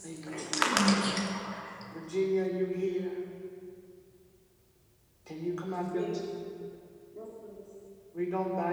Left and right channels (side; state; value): both; identical; correlation 1.00